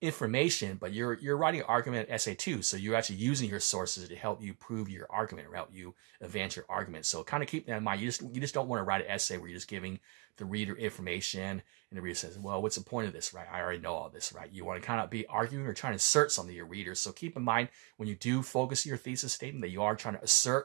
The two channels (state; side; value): quieter; left; 28.8 dB